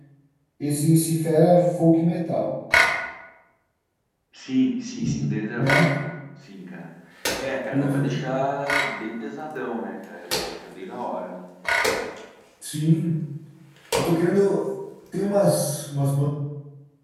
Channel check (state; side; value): identical; both; correlation 1.00